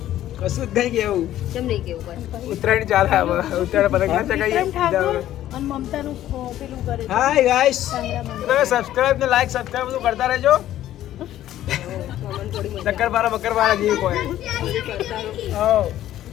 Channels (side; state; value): right; quieter; 12.9 dB